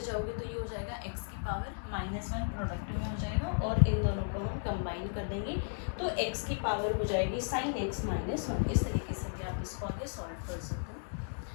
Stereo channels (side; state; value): right; silent; digital silence